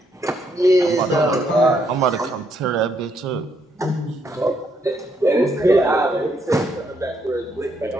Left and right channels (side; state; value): both; normal; correlation 0.74